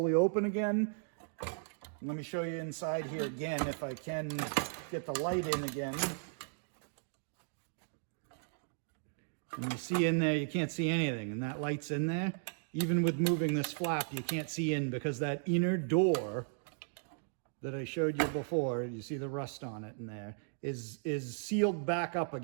open again. Let me show you inside here again if I can get the light in again. And you see in there, you can't see anything, and that light's in there. Even with moving this flap, you can't see in because that inner door that I showed you before, you see the rust on it in there, is sealed back up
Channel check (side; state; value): left; silent; digital silence